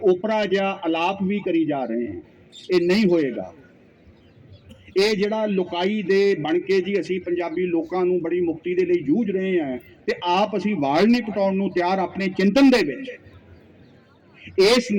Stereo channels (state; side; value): identical; both; correlation 1.00